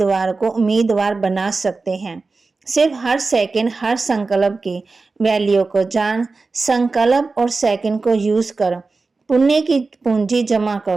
को उम्मीदवार बना सकते हैं। सिर्फ हर सेकंड हर संकल्प की वैल्यू को जान, संकल्प और सेकंड को यूज कर पुण्य की पूंजी जमा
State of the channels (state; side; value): quieter; left; 3.9 dB